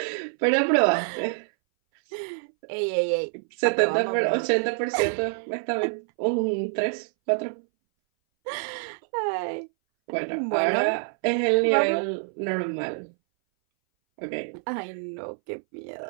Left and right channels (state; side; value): silent; left; 60 dB below the other